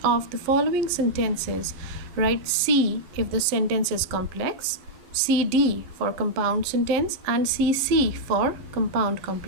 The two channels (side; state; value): left; late; 11 ms